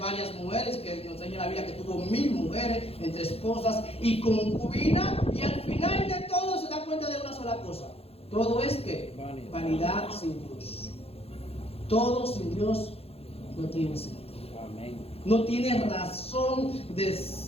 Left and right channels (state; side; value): late; right; 0.29 ms